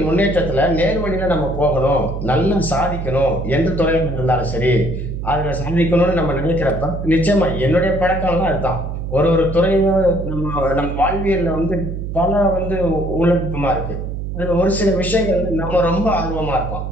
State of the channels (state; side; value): noise; right; hum, 5 dB below the sound